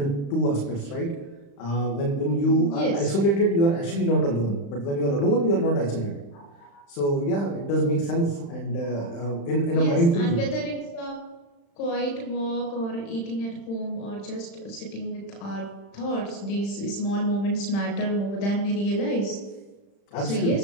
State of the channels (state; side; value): late; right; 35 ms